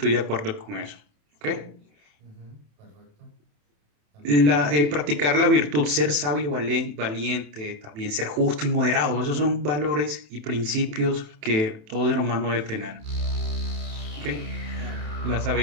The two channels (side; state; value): left; late; 27 ms